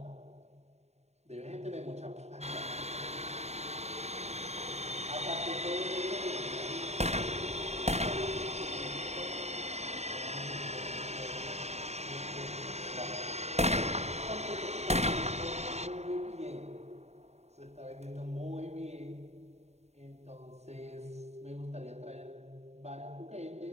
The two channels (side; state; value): left; late; 0.32 ms